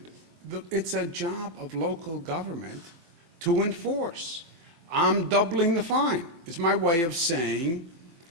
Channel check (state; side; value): late; left; 23 ms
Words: it's a job of local government to enforce. I'm doubling the fine. It's my way of saying,